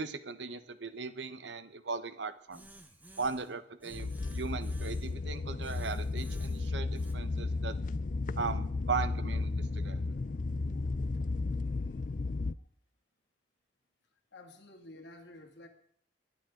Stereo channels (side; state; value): both; normal; correlation 0.56